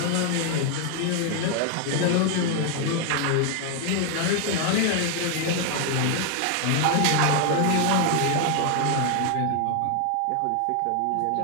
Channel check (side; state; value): both; different; correlation 0.00